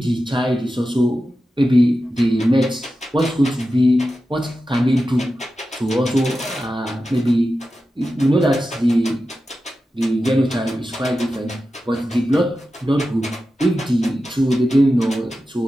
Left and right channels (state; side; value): normal; both; correlation 0.92